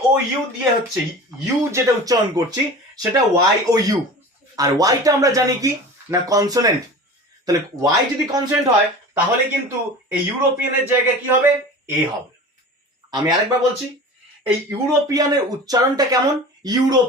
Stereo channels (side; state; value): both; normal; correlation 0.36